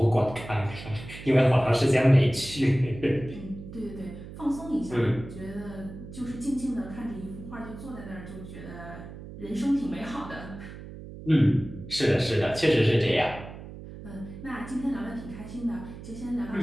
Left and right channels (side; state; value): right; noise; hum, 13 dB below the sound